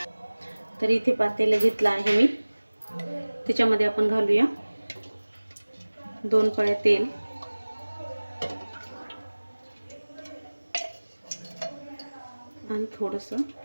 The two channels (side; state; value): both; inverted; correlation -1.00